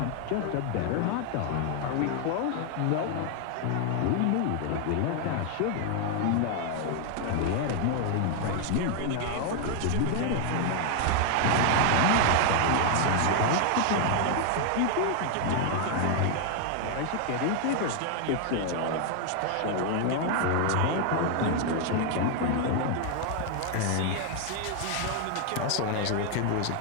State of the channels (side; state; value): both; different; correlation 0.00